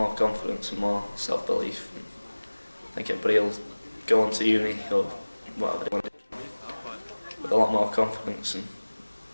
confidence and more self-belief. And I think everybody will go on to uni or whatever they want to do with a lot more confidence and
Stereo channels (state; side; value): inverted; both; correlation -1.00